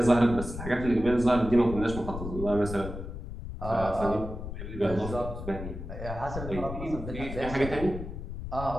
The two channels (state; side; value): noise; left; rumble, 8 dB below the sound